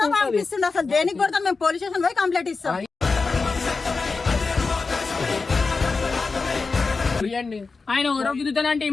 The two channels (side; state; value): right; quieter; 4.3 dB